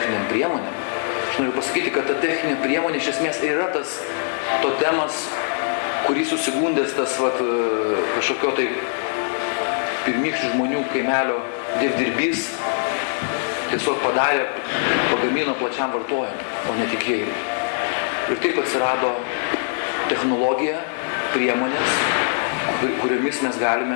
priemonėm, aš noriu pasakyti, kad ta techninė priemonė iš esmės yra tas totemas, kurį susigundęs tas kažkokio tai pirmykščių žmonių kaimelio dievdirbys tiesiog pagamino plačiam vartojimui, o ne tikėjimui. Ir taip atsirado technologija, priemonės, kuriomis mes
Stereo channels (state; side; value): silent; right; digital silence